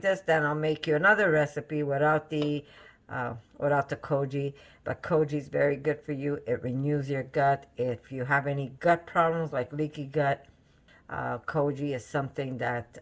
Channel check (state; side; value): identical; both; correlation 1.00